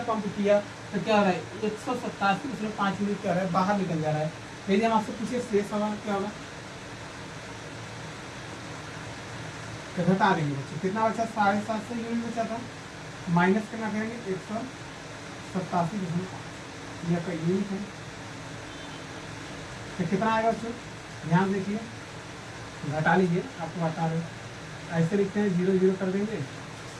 पंप किया तो क्या हो रहा है, 187 उसमें 5 यूनिट क्या हो रहा है, बाहर निकल जा रहा है। यदि हम आपसे पूछे शेष हवा क्या होगा, तो घटा देंगे बच्चों, कितना बचा, 750 यूनिट बचा था, माइनस कितना करेंगे, 187.5 यह का यूनिट है। तो कितना आएगा बच्चों, ध्यान देखिए, घटा लीजिए, आपको बता रहे ऐसे लिखते हैं, 0 0 कर देंगे,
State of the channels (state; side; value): identical; both; correlation 1.00